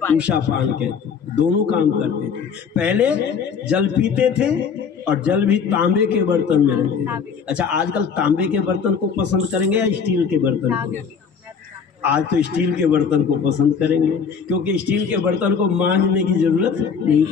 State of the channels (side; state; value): right; quieter; 6.3 dB